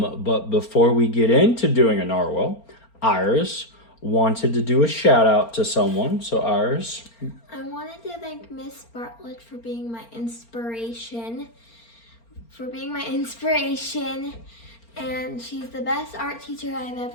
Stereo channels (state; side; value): late; right; 4.4 ms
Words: before we get into doing a narwhal, Iris wanted to do a shout out to someone. So Iris. I wanted to thank Miss Bartlett for being my inspiration. And she's the best art teacher I've